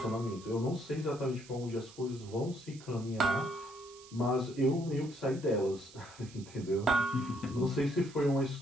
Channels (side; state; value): right; noise; hiss, 20 dB below the sound